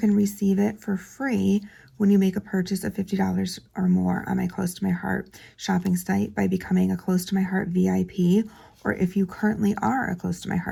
receive it for free when you make a purchase of $50 or more on my Close to My Heart shopping site by becoming a Close to My Heart VIP, or if you currently are a Close to My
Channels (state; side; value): identical; both; correlation 1.00